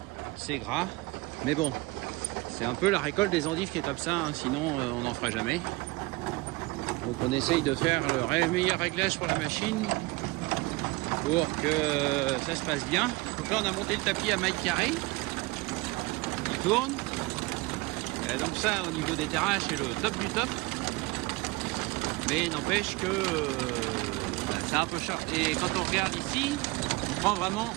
c'est gras. Mais bon, c'est un peu la récolte des endives qui est comme ça, hein, sinon on n'en fera jamais. Donc on essaye de faire le meilleur réglage pour la machine pour que ça se passe bien. Donc là on a monté le tapis à maille carrée, il tourne. Et donc ça au niveau des terrasses c'est le top du top. Mais n'empêche que c'est un peu cher. Et quand on regarde ici, on prend vraiment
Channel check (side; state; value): left; quieter; 23.1 dB